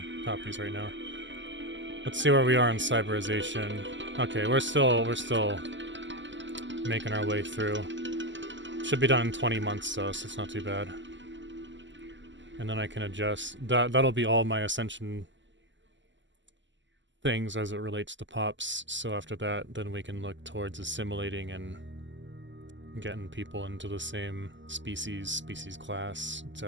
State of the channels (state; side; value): late; left; 0.54 ms